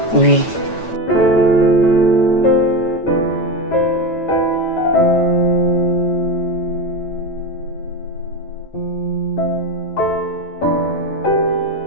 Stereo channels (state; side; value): late; right; 9.1 ms